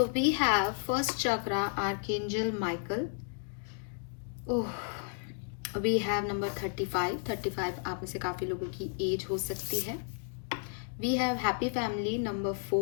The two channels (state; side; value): silent; right; 56 dB below the other